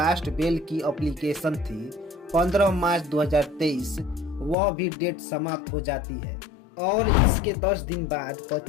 बेल की एप्लीकेशन थी 15 मार्च 2023, वह भी डेट समाप्त हो जाती है और इसके 10 दिन बाद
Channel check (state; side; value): drops out; right; at 4.5 s